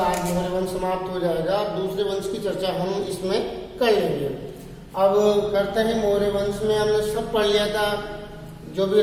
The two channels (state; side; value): identical; both; correlation 1.00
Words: मौर्य वंश समाप्त हो जाएगा, दूसरे वंश की चर्चा हम इसमें कर लेंगे। अब करते हैं मौर्य वंश में हमने सब पढ़ लिया था, जो भी